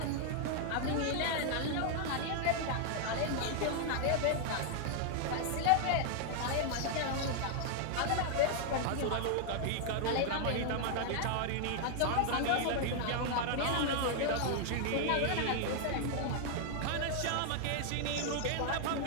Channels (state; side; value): different; both; correlation 0.00